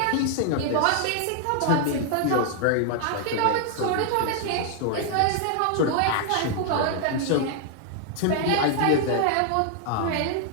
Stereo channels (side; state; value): both; different; correlation 0.00